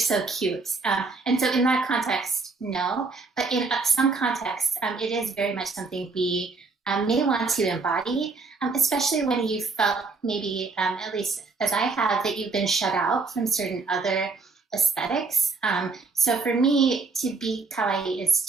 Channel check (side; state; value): left; quieter; 4.1 dB